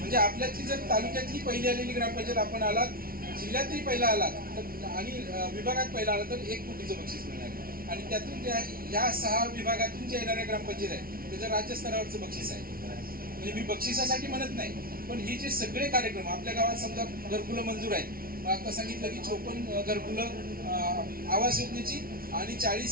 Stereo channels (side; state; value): left; late; 0.43 ms